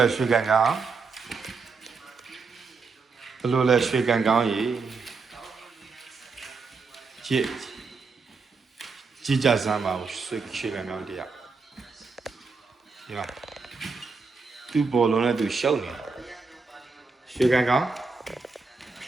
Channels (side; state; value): left; quieter; 4.5 dB